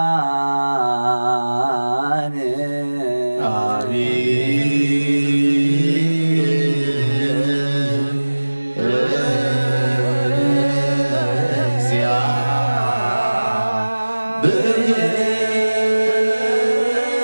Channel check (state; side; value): inverted; both; correlation -1.00